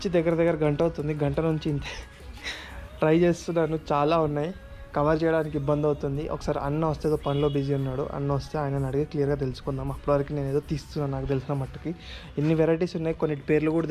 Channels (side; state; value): both; identical; correlation 1.00